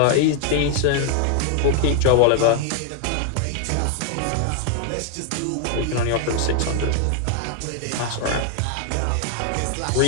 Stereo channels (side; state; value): both; different; correlation 0.00